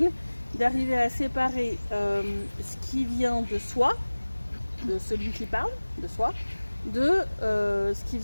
d'arriver à séparer ce qui vient de soi, de celui qui parle, de soi, de ce qui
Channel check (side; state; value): both; inverted; correlation -1.00